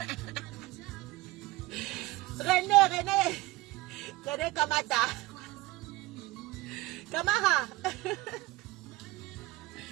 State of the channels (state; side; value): quieter; left; 19.0 dB